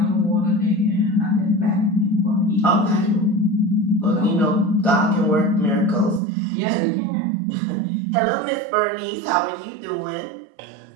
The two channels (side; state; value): left; drops out; at 6.2 s